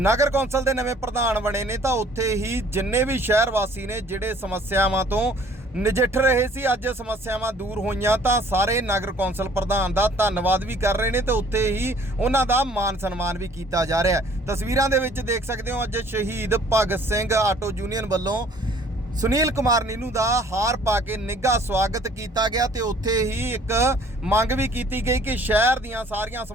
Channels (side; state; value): both; normal; correlation 0.55